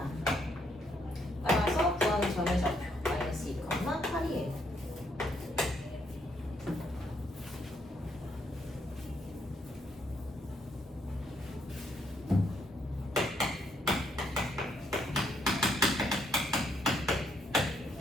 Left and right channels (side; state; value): both; normal; correlation 0.73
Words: 따라서 구하는 점의 좌표 마이너스 2, 8이에요.